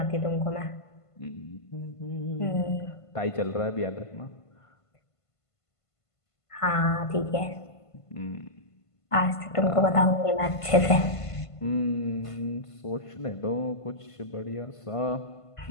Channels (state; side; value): late; right; 1.5 ms